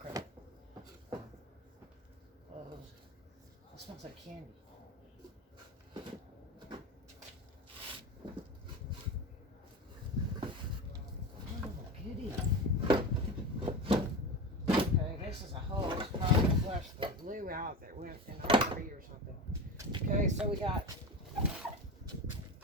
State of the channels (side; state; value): both; normal; correlation 0.25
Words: It smells like candy. Oh, goody. Okay, this is a hose. Probably flushed the glue out that went in a hurry or something. Okay, so we got